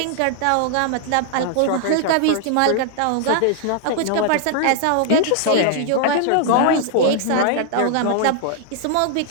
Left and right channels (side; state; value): both; different; correlation -0.01